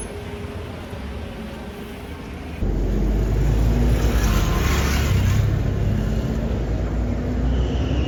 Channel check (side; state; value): both; identical; correlation 1.00